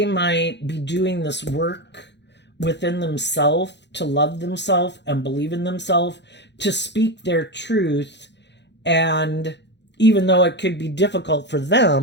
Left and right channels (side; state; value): right; late; 0.51 ms